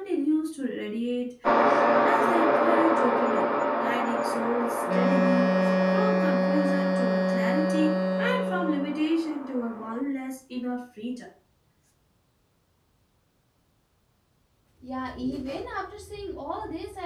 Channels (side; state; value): both; identical; correlation 1.00